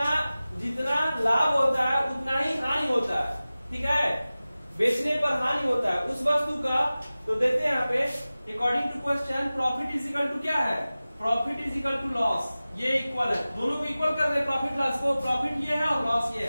लाभ होता है उतना ही हानि होता है, ठीक है, बेचने पर हानि होता है उस वस्तु का। तो देखते हैं यहाँ पे, according to question profit is equal to क्या है, profit is equal to loss, ये इक्वल है, दोनों को इक्वल कर दे प्रॉफिट लॉस को, प्रॉफिट ये है और लॉस ये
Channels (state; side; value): inverted; both; correlation -0.97